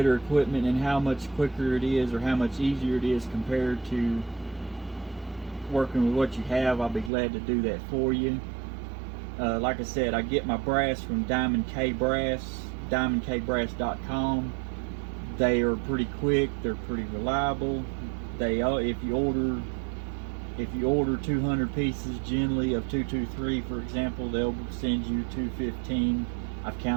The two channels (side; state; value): left; drops out; at 7.1 s